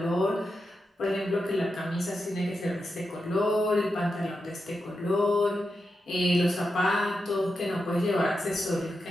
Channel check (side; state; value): both; normal; correlation 0.88